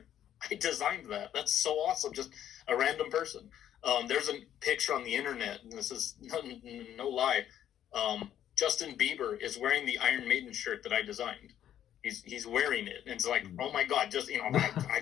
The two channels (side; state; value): right; quieter; 10.8 dB